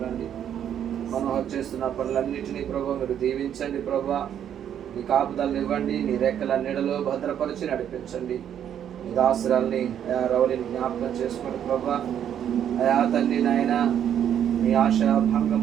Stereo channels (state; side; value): quieter; left; 9.6 dB